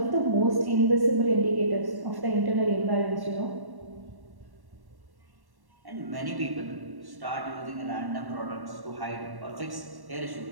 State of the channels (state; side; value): late; left; 1.1 ms